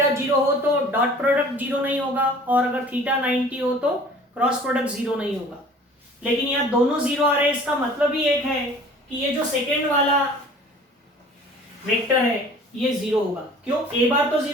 0 हो तो डॉट प्रोडक्ट 0 नहीं होगा, और अगर थीटा 90 हो तो क्रॉस प्रोडक्ट 0 नहीं होगा। लेकिन यहाँ दोनों 0 आ रहे हैं, इसका मतलब ही एक है कि ये जो सेकेंड वाला वेक्टर है ये 0 होगा। क्यों? ए बार तो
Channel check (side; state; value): both; normal; correlation 0.48